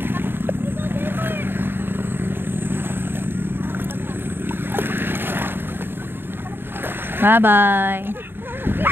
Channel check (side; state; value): left; late; 0.10 ms